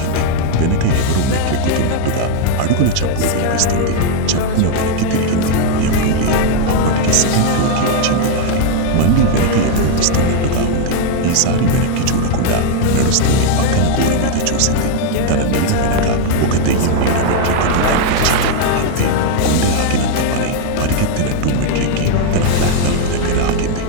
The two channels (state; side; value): different; both; correlation 0.00